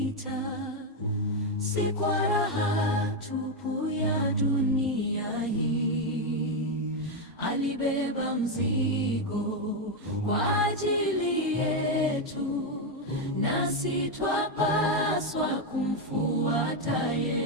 si kwa raha tupu ya dunia hii. Alibeba mzigo kwa ajili yetu, nasi twapaswa kumfuata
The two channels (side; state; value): both; normal; correlation 0.05